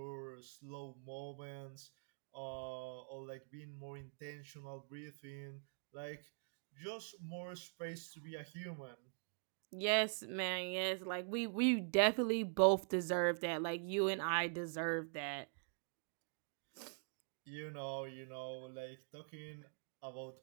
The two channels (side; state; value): left; silent; digital silence